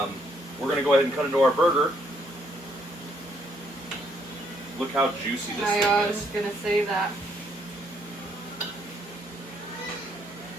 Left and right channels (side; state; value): both; normal; correlation 0.70